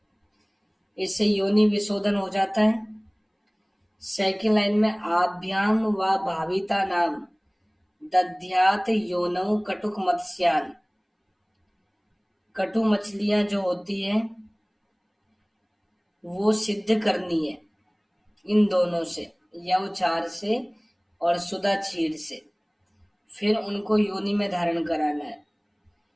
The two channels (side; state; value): both; identical; correlation 1.00